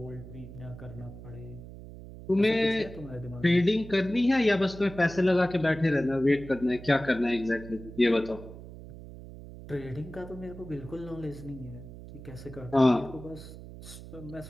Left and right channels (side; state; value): right; noise; hum, 14 dB below the sound